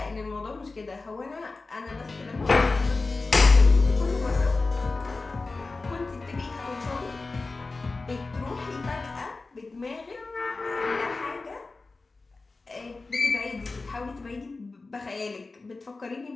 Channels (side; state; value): right; quieter; 3.7 dB